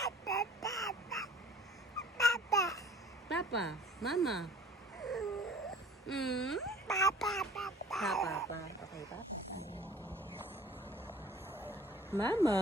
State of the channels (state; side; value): normal; both; correlation 0.48